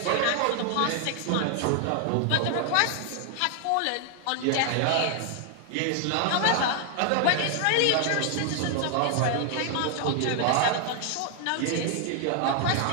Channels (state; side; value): different; both; correlation 0.00